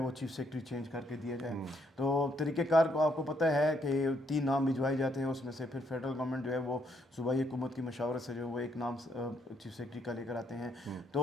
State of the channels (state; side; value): normal; both; correlation 0.73